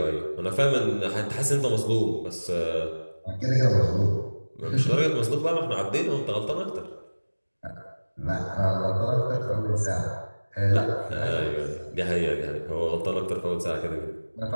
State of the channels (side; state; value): both; inverted; correlation -1.00